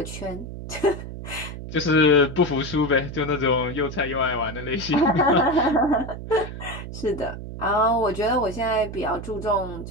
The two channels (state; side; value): noise; right; hum, 10 dB below the sound